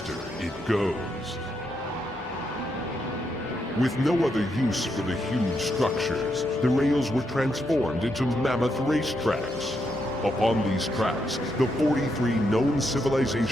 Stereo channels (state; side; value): normal; both; correlation 0.80